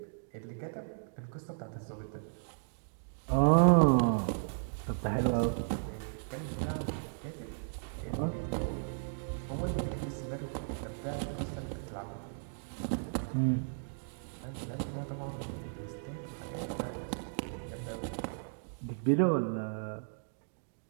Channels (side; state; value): left; silent; digital silence